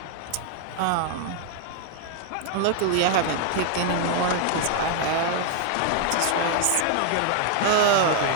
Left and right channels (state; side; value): different; both; correlation 0.00